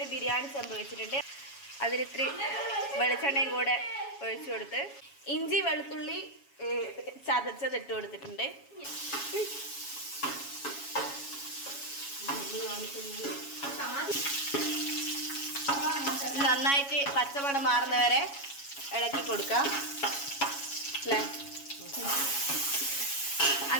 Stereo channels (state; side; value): late; right; 7.2 ms